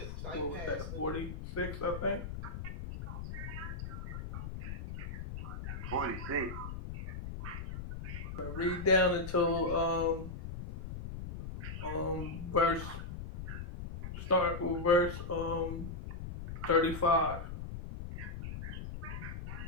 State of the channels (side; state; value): left; noise; rumble, 7 dB below the sound